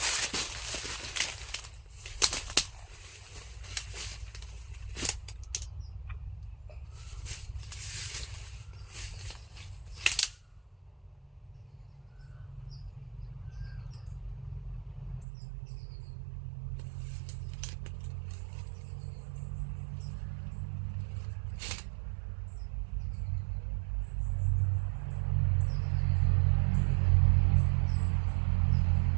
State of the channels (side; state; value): left; drops out; at 15.2 s